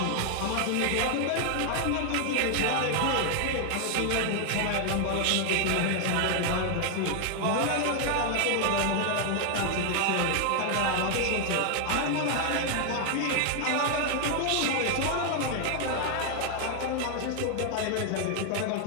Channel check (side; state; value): both; different; correlation 0.00